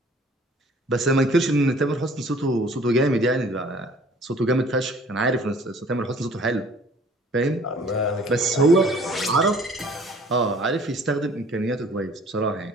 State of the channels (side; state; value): both; normal; correlation 0.53